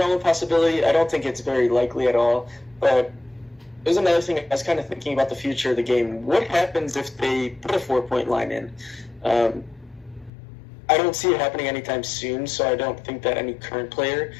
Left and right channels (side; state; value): right; drops out; at 10.3 s